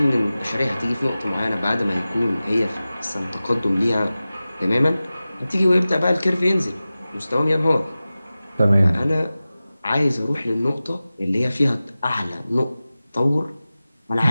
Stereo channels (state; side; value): inverted; both; correlation -0.96